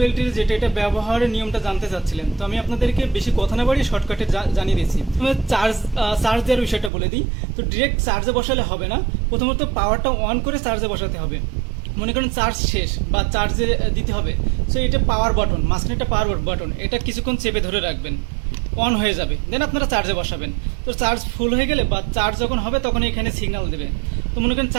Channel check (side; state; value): left; drops out; at 6.9 s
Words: এটা ব্যবহারের নিয়মটা জানতে চাচ্ছিলেন, তো আমি আপনাদেরকে বেশি কথা না বাড়িয়ে শর্টকাটে জানিয়ে দিচ্ছি। চার্জ দেওয়ার বিষয়টা বলে দিই। তো ডিরেক্ট চার্জে বসালে হবে না, প্রথমত পাওয়ারটা অন করে চার্জে বসাতে হবে। মনে করেন চার্জ শেষ বা চার্জে দিতে হবে, সো এটা পাওয়ার বাটন, মাঝখানে একটা পাওয়ার বাটন, এটা কিছুক্ষণ চেপে ধরে রাখবেন, অন হয়ে যাবে, দেন আপনারা চার্জে বসাবেন। তো চার্জ ফুল হয়ে গেলে বা চার্জ যখন হবে তখন এখানে সিগন্যাল দেবে। তো মনে করেন